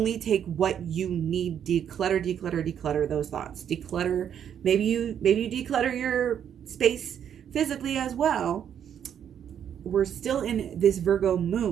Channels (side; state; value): left; quieter; 9.0 dB